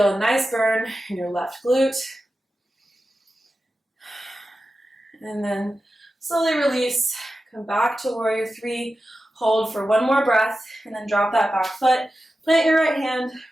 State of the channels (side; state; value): both; normal; correlation 0.93